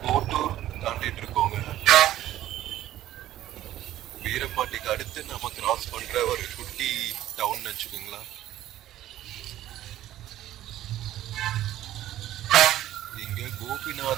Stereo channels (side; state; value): left; quieter; 13.4 dB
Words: கோட்டூர் தாண்டிட்டு இருக்கோங்க. வீரபாண்டிக்கு அடுத்து நம்ம கிராஸ் பண்ற ஒரு குட்டி டவுன் வச்சுக்கோங்களா. இங்க